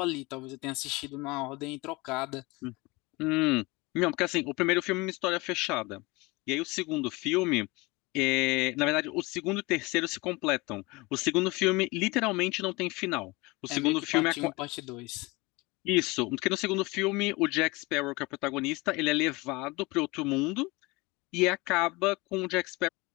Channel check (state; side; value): quieter; right; 24.0 dB